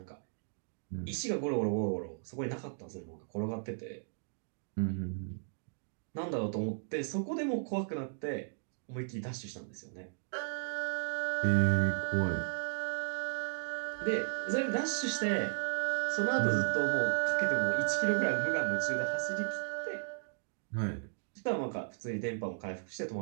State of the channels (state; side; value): silent; left; digital silence